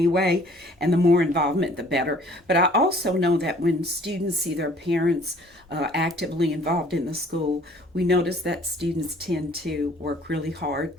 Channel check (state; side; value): normal; both; correlation 0.55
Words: and the more involvement, the better. But I also know that when students see their parents actively involved in the school, we notice that students tend to work really hard